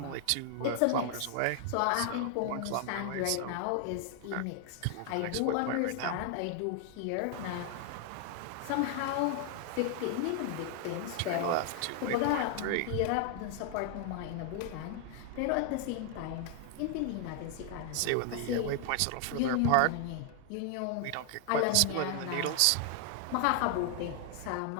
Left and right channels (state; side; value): different; both; correlation 0.00